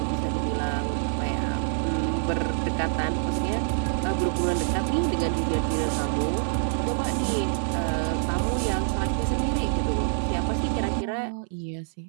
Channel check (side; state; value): left; silent; 61 dB below the other